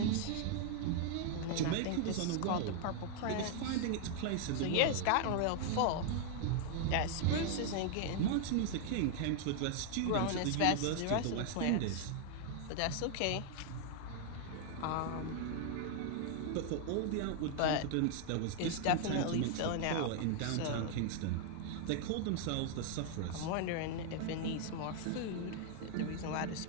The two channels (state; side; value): different; both; correlation 0.00